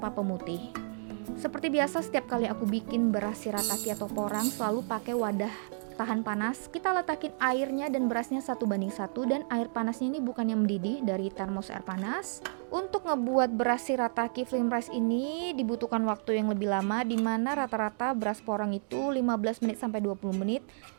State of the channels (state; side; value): silent; left; digital silence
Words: pemutih. Seperti biasa setiap kali aku bikin beras shirataki atau porang selalu pakai wadah tahan panas. Kita letakin airnya dan berasnya 1:1 dan air panasnya ini bukan yang mendidih dari termos air panas. Untuk ngebuat beras shirataki Flimrice ini dibutuhkan waktu yang lebih lama, dimana rata-rata beras porang itu 15 menit sampai 20 menit,